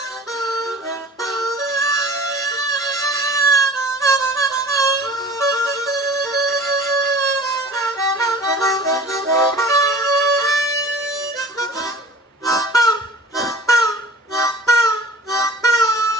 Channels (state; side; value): normal; both; correlation 0.43